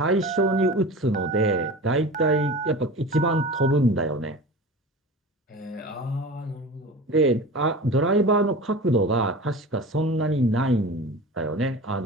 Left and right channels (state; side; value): normal; both; correlation 0.34